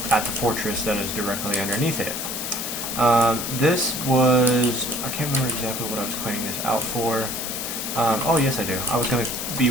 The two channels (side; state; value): left; noise; hiss, 4 dB below the sound